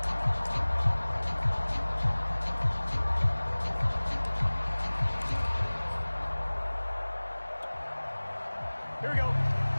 Here we go.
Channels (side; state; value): both; inverted; correlation -1.00